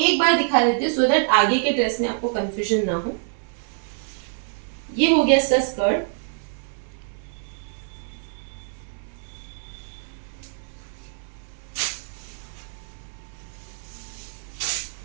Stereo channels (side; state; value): left; silent; digital silence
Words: बार दिखा देती हूँ सो दैट आगे के ड्रेस में आपको कंफ्यूजन ना हो। ये हो गया इसका स्कर्ट,